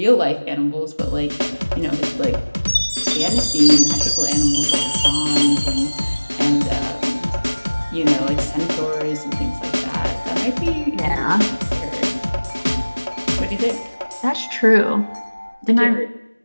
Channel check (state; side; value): inverted; both; correlation -1.00